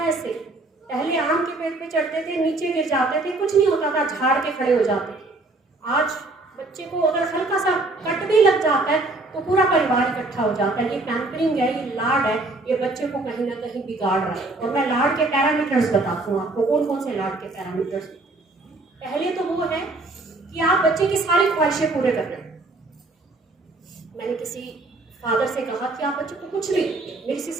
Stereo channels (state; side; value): quieter; left; 3.1 dB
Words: ऐसे, पहले आम के पेड़ पे चढ़ते थे, नीचे गिर जाते थे, कुछ नहीं होता था, झाड़ के खड़े हो जाते थे। आज बच्चे को अगर हल्का सा कट भी लग जाता है तो पूरा परिवार इकट्ठा हो जाता है। ये पैम्परिंग है, ये लाड है, ये बच्चे को कहीं ना कहीं बिगाड़ रहा है। और मैं लाड के पैरामीटर्स बताती हूँ आपको, कौन कौन से लाड के पैरामीटर्स। पहले तो वो है कि आप बच्चे की सारी ख्वाहिशें पूरे कर रहे हैं। मैंने किसी फादर से कहा कि आप बच्चे को कुछ भी, मेरी